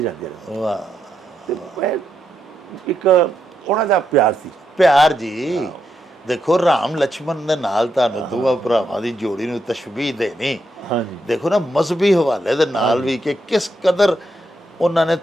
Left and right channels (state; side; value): normal; both; correlation 0.82